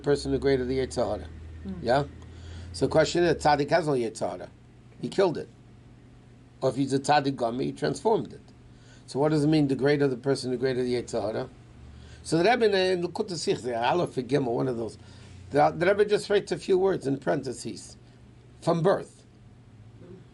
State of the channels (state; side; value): identical; both; correlation 1.00